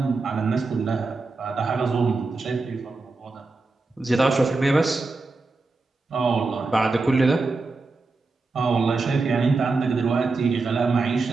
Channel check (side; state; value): left; quieter; 3.7 dB